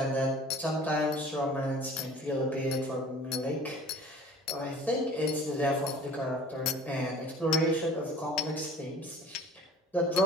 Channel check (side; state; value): both; normal; correlation 0.44